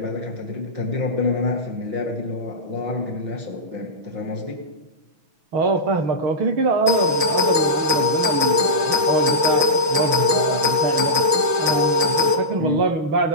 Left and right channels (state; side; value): late; left; 5.6 ms